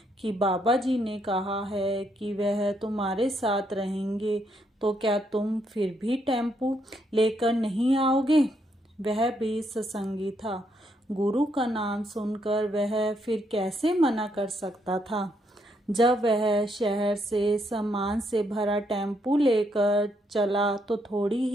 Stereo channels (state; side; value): normal; both; correlation 0.75